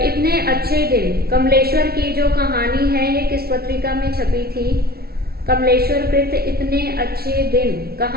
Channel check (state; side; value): late; left; 0.45 ms